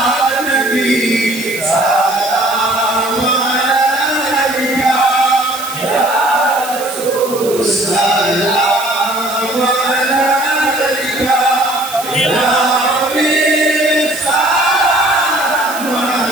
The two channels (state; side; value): noise; right; hiss, 11 dB below the sound